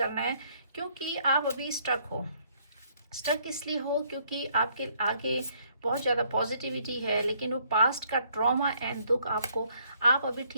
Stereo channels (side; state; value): both; inverted; correlation -0.67